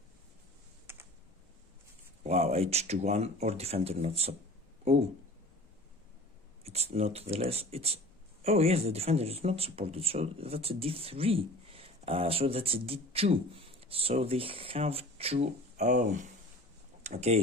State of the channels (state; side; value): normal; both; correlation 0.42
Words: Wow, H2-1 or defender not sub. Oh, it's not the less. It's oh yes, the defender is not supported, so that's a D3. So that's a D2. So they have to. Oh,